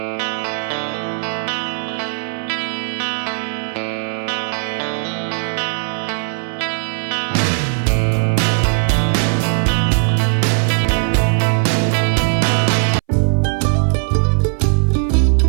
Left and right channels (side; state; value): left; silent; 63 dB below the other